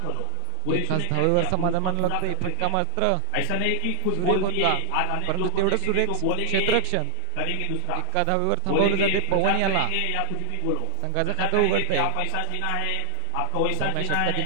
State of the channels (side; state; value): both; different; correlation 0.00